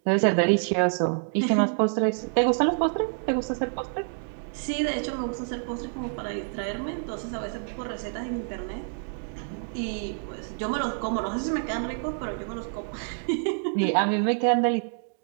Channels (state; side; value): silent; left; 60 dB below the other